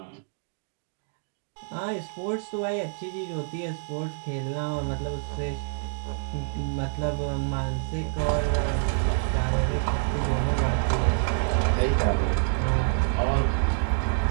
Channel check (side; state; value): left; silent; 60 dB below the other